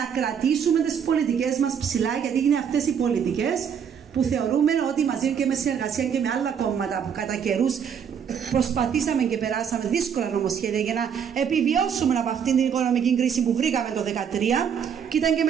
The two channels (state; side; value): quieter; left; 7.6 dB